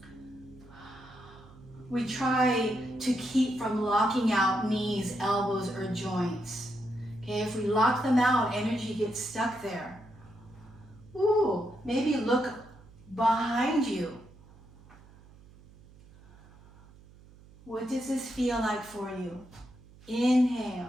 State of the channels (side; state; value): right; noise; hum, 23 dB below the sound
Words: We try to keep from locking out knees, elbows, or joints. Okay, if we lock them out, energy gets stuck there. Ooh, maybe look behind you. What does this feel like for you?